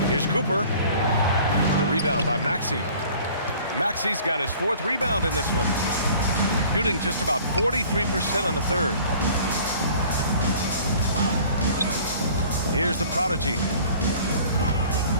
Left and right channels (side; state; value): both; inverted; correlation -0.49